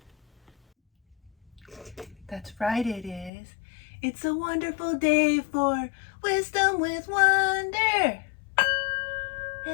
That's right, it is. It's a wonderful day for wisdom with wonder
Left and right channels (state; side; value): drops out; right; at 3.3 s